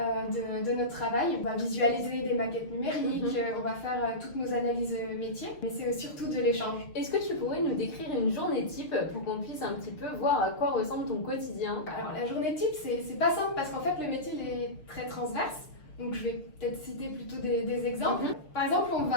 notre travail. On va visualiser des maquettes numériques, on va faire toutes nos analyses métiers, mais c'est surtout de l'échange. Est-ce que tu pourrais nous décrire une journée type pour qu'on puisse un petit peu voir à quoi ressemble ton quotidien? Alors la journée type, c'est pas simple parce qu'en fait le métier il est très transverse. Donc je vais peut-être citer plutôt des exemples. Par exemple, on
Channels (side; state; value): right; late; 6.6 ms